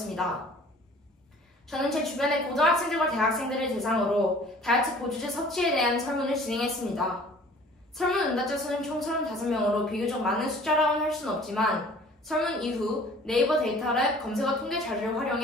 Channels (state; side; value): normal; both; correlation 0.50